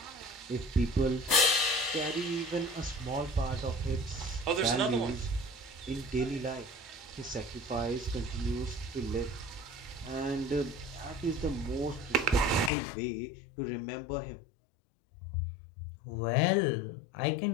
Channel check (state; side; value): drops out; right; at 12.7 s